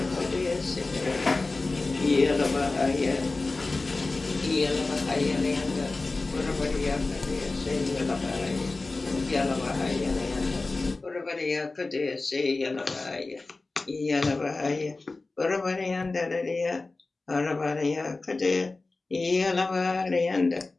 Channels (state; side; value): quieter; right; 3.4 dB